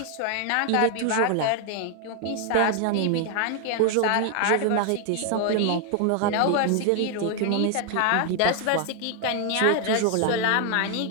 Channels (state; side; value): different; both; correlation 0.00